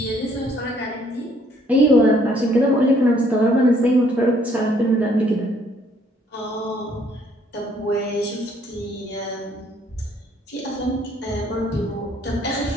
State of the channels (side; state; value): both; normal; correlation 0.64